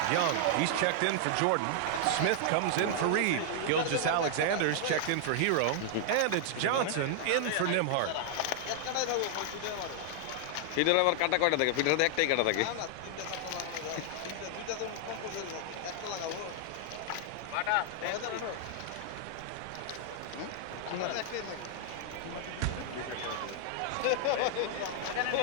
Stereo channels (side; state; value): both; different; correlation -0.01